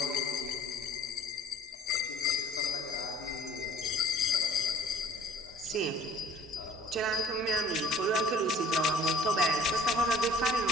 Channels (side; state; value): both; normal; correlation 0.52